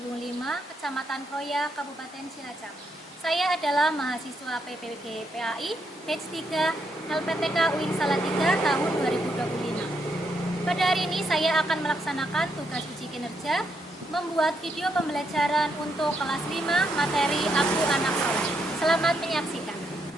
5, Kecamatan Kroya, Kabupaten Cilacap. Saya adalah mahasiswa PPG PAI Batch 3 LPTK UIN Salatiga tahun 2025. Pada hari ini saya akan melaksanakan tugas uji kinerja membuat video pembelajaran untuk kelas 5 materi Aku Anak Soleh. Selamat menyaksikan.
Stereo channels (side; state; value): both; normal; correlation 0.78